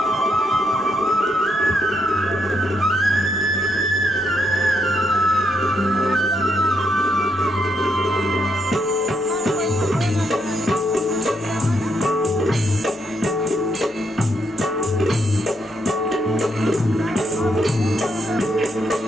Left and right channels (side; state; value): both; normal; correlation 0.77